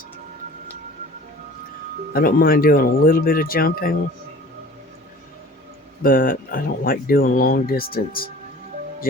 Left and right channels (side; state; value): both; normal; correlation 0.45